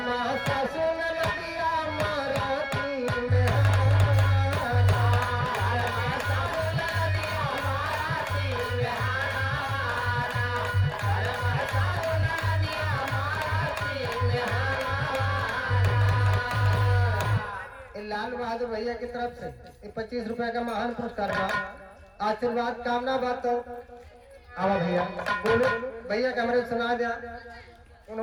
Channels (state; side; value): identical; both; correlation 1.00